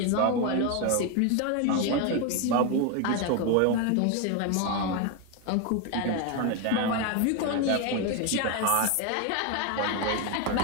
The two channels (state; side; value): different; both; correlation 0.01